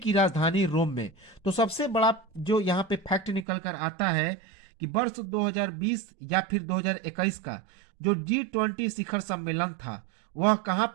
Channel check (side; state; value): left; drops out; at 3.5 s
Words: राजधानी रोम में। तो सबसे बड़ा जो यहां पे फैक्ट निकल कर आता है कि वर्ष 2020 या फिर 2021 का जो G20 शिखर सम्मेलन था वह कहां